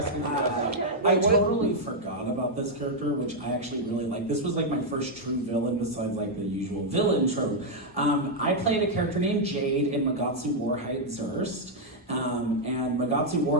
for that. I totally forgot about this character, which I actually really like. This was like my first true villain besides like the usual villain trope. I played a character named Jade in Magatsu Warhide Zurst. And Magatsu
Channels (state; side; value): normal; both; correlation -0.02